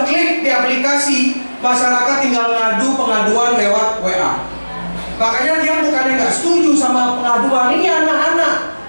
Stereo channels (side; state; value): both; inverted; correlation -1.00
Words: klik di aplikasi, masyarakat tinggal ngadu pengaduan lewat WA. Makanya dia bukannya nggak setuju sama pengaduan. Ini